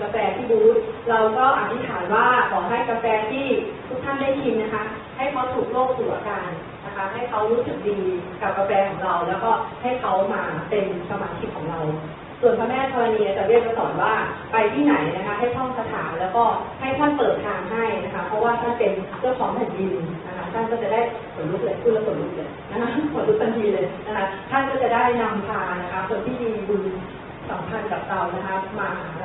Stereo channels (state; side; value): identical; both; correlation 1.00